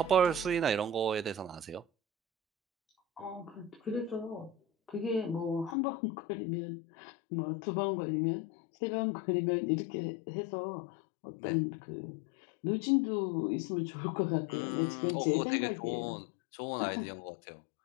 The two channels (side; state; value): right; drops out; at 5.8 s